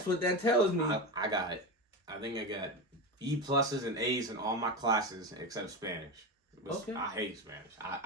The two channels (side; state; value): both; normal; correlation 0.19